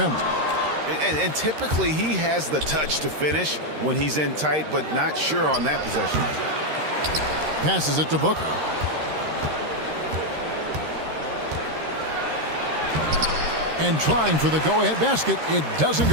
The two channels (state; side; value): late; left; 13 ms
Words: And typically he has the touch to finish when he's in tight, but not sure on that possession. Passes it to Booker. And trying for the go-ahead basket, it doesn't